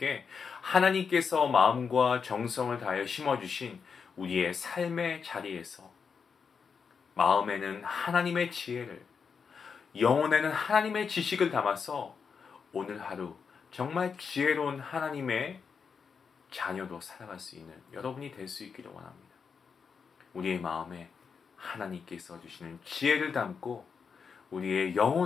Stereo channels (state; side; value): quieter; right; 5.9 dB